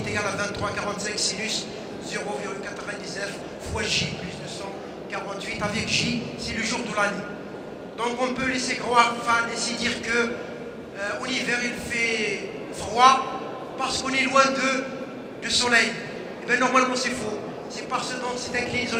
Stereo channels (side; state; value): both; identical; correlation 1.00